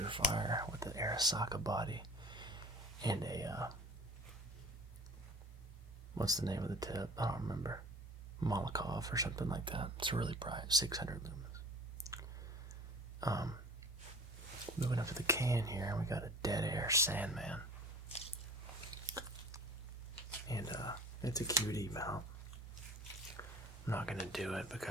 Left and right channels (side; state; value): both; normal; correlation 0.42